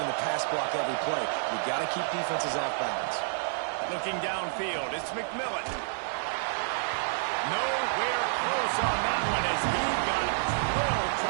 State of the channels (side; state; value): left; silent; digital silence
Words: the pass block every play. You've got to keep defenses off balance. Looking downfield, it's McMillan. Nowhere close on that one as he got thrilled